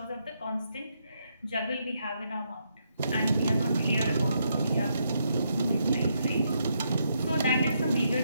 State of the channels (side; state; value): both; inverted; correlation -0.78